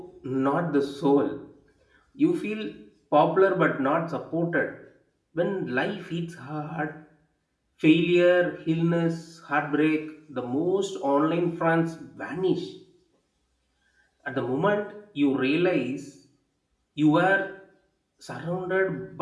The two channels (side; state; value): both; identical; correlation 1.00